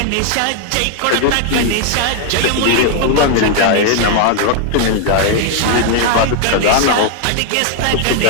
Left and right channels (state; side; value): different; both; correlation 0.00